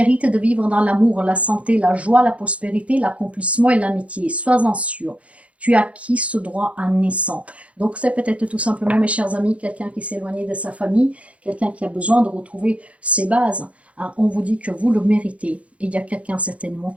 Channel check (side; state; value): left; late; 0.064 ms